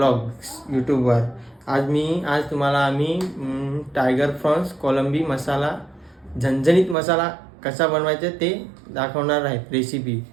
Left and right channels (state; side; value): drops out; left; at 7.0 s